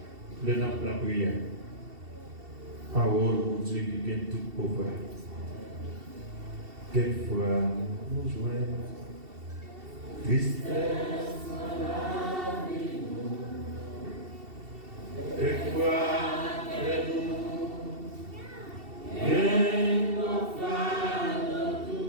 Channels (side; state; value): left; late; 2.7 ms